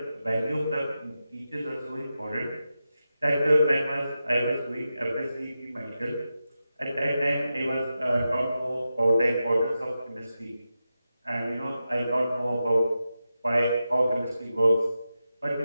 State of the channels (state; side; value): inverted; both; correlation -0.90